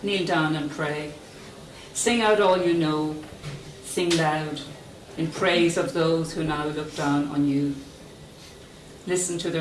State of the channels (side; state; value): both; identical; correlation 1.00